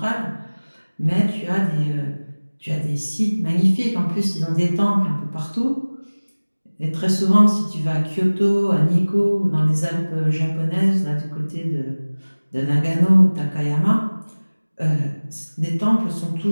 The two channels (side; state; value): both; inverted; correlation -1.00